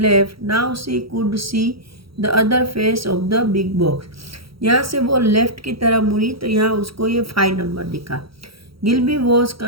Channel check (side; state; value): left; late; 0.75 ms